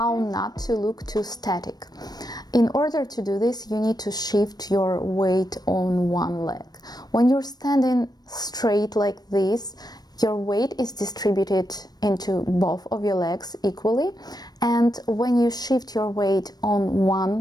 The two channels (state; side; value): late; right; 0.19 ms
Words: not to look too static. In order to do this, you need to shift your weight on one leg. When you're standing straight like this, your weight is distributed into both of your legs equally, and when you shift your weight on